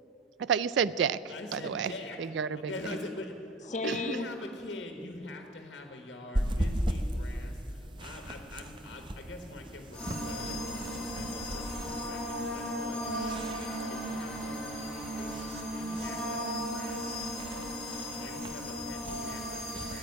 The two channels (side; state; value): both; normal; correlation 0.41